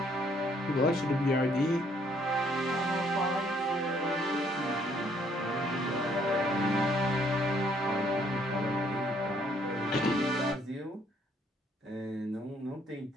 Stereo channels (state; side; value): normal; both; correlation 0.66